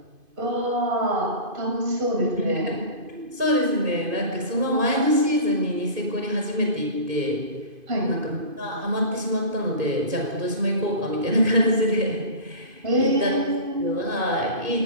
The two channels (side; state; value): left; late; 2.5 ms